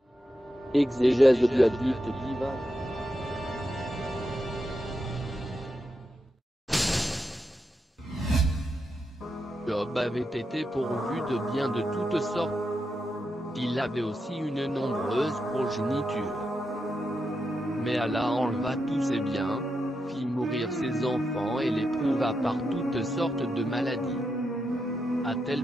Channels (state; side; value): normal; both; correlation 0.86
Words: » Exégèse du hadith divin. Job avait été pourvu de biens de toutes sortes. Il avait aussi une nombreuse progéniture. Mais Allah enleva tous ses biens, fit mourir ses enfants et l'éprouva par toutes sortes de maladies. À tel